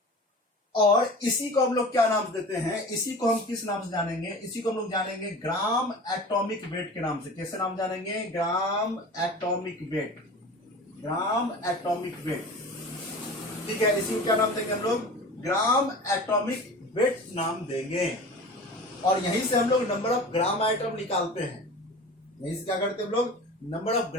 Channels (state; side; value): normal; both; correlation 0.37